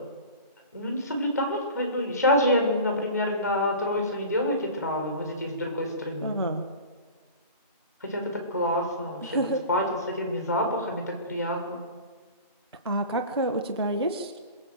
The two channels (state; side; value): inverted; both; correlation -0.37